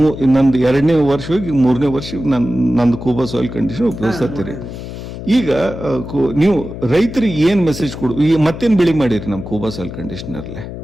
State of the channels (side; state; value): left; noise; hum, 10 dB below the sound